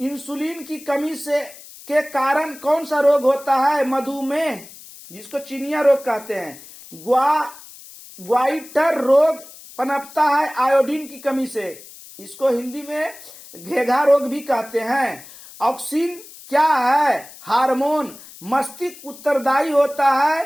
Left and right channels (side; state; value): left; noise; hiss, 18 dB below the sound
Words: की कमी के कारण कौन सा रोग होता है? मधुमेह, जिसको चिनिया रोग कहते हैं। ग्वाइटर रोग पनपता है आयोडीन की कमी से। इसको हिंदी में घेघा रोग भी कहते हैं। ऑक्सिन क्या है? हार्मोन। मस्तिष्क उत्तरदायी होता